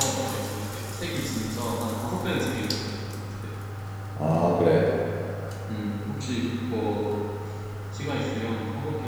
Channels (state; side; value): identical; both; correlation 1.00